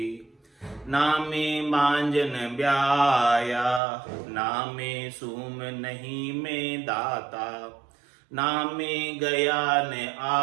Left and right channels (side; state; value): left; drops out; at 3.8 s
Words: ना में मांजन ब्याया, ना में सूम नहीं में दाता, ना में गया न